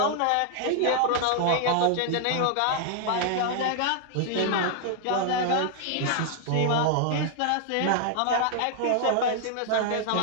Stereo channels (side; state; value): both; different; correlation 0.00